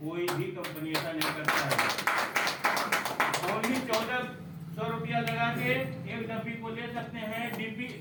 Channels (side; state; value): both; identical; correlation 1.00